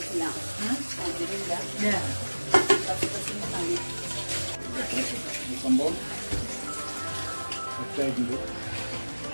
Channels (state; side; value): inverted; both; correlation -1.00